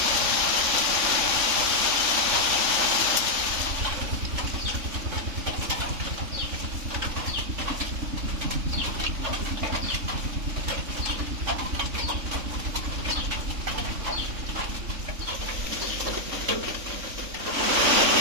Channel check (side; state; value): left; late; 3.6 ms